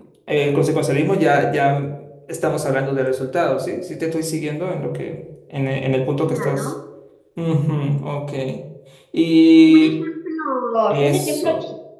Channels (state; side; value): identical; both; correlation 1.00